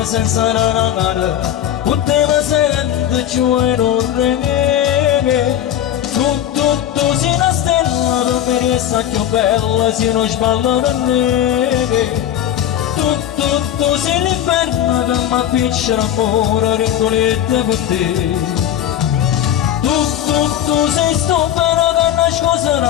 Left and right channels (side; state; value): right; quieter; 10.9 dB